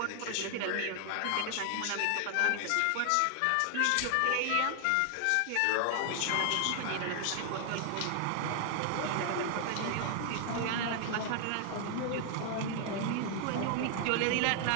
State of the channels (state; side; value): different; both; correlation 0.00